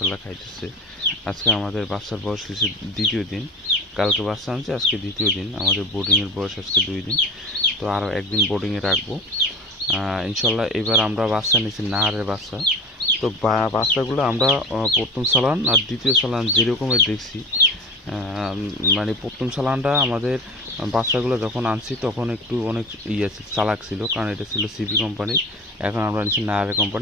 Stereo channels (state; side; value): normal; both; correlation 0.33